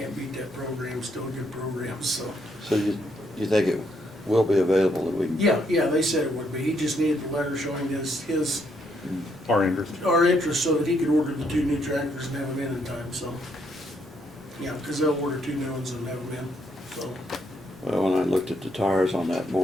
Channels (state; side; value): normal; both; correlation 0.74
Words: beat that program, still a good program. So So you think will be available that we can. Yeah, they said it would be. He just needed the letter showing his, Our interest. our interest so that he could order the 2 new tractors and have them in time, so. Yeah, because they'll order 2 new ones and have them in, so. Well, when I looked at the tires on that